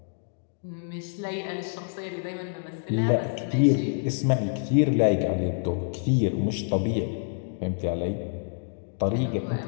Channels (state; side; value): silent; right; digital silence